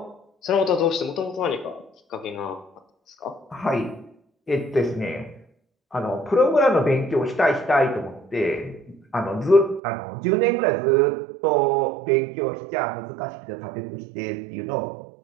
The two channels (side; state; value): left; drops out; at 9.8 s